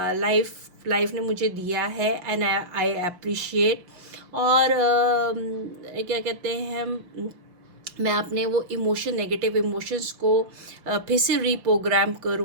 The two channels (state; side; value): late; left; 5.7 ms